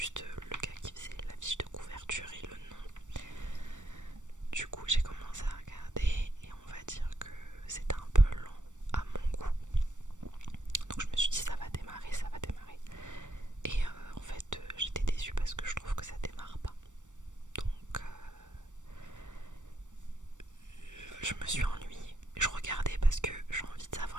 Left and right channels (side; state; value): left; late; 0.85 ms